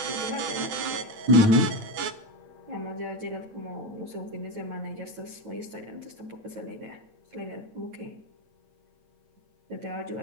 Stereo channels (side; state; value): left; late; 9.8 ms